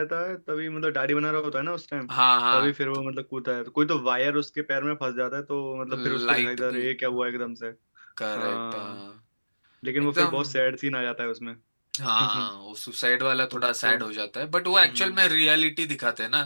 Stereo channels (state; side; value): inverted; both; correlation -1.00